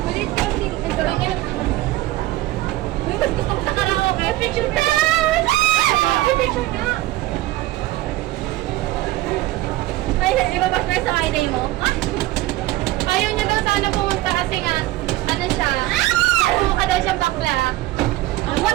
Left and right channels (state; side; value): quieter; left; 17.2 dB